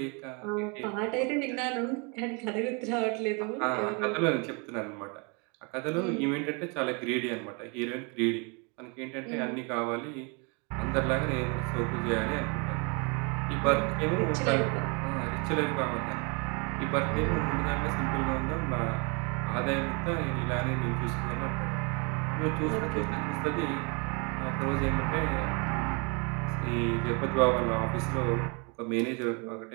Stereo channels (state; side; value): quieter; left; 32.9 dB